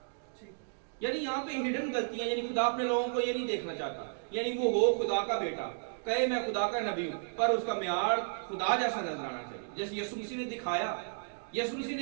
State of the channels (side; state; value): left; silent; digital silence